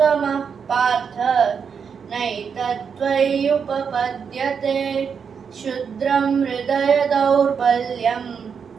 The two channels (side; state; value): left; quieter; 6.5 dB